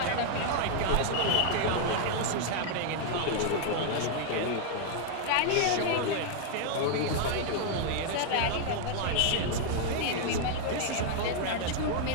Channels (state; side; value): different; both; correlation 0.00